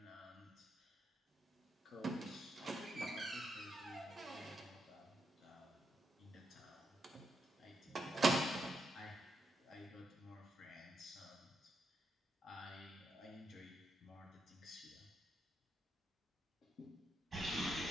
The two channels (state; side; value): normal; both; correlation 0.81